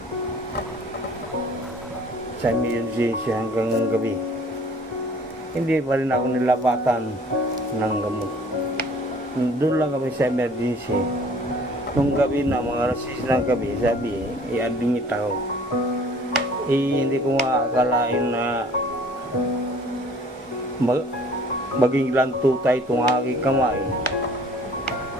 sa emergency hanggang gabi. Hindi pa rin ako nilapatan ng gamot. Doon lang kami sa emergency. Nung gabi na, mga alas 6 ng gabi, sabi, i-admit ako. Hindi ko makakalain na maging lantutay itong aking kamay.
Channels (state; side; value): normal; both; correlation 0.53